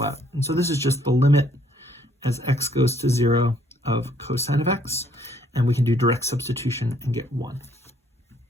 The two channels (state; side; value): normal; both; correlation 0.65